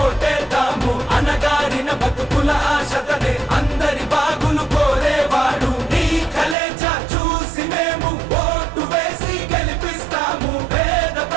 ఓటేద్దాము. అనగారిన బతుకుల ఆశతనే అందరి బాగులు కోరేవాడు. నీ కలేజ చూసి మేము ఓటు వేసి గెలిపిస్తాము. పేద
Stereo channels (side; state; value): left; drops out; at 6.6 s